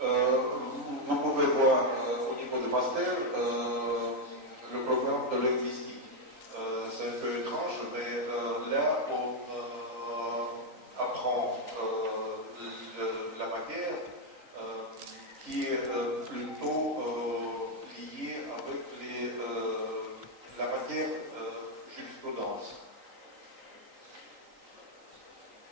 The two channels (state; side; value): late; left; 3.9 ms